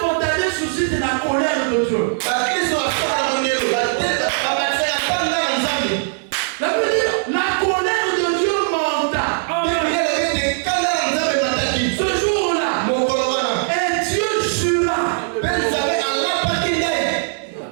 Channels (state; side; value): silent; left; 59 dB below the other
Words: suscitent la colère de Dieu. Ça veut dire la colère de Dieu monta. Ce jour-là, et Dieu jura.